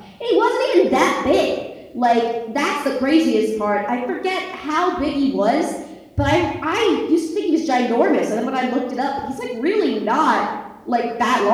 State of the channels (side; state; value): both; identical; correlation 1.00